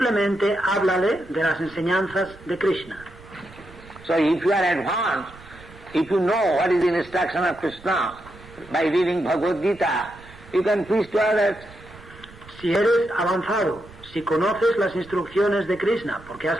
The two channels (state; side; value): noise; right; rumble, 21 dB below the sound